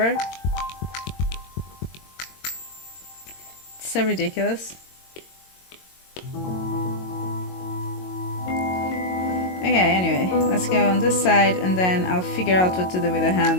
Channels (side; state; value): right; late; 22 ms